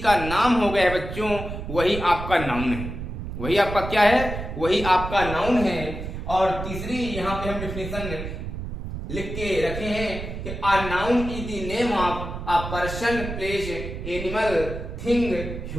नाम हो गया है बच्चों वही आपका नाउन है। वही आपका क्या है, वही आपका नाउन है। और तीसरी यहाँ पे हम डिफिनेशन लिख के रखे हैं कि a noun is the name of a person, place, animal, thing,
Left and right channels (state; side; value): noise; right; rumble, 7 dB below the sound